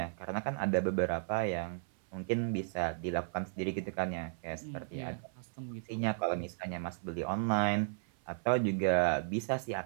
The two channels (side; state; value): left; silent; 55 dB below the other